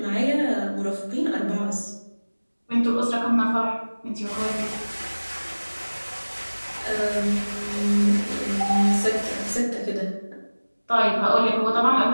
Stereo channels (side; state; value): both; inverted; correlation -1.00